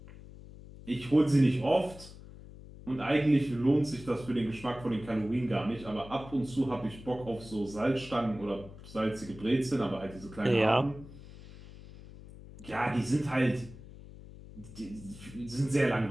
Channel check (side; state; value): left; noise; hum, 17 dB below the sound